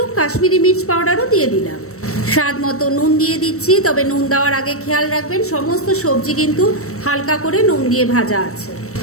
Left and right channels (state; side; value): late; right; 0.64 ms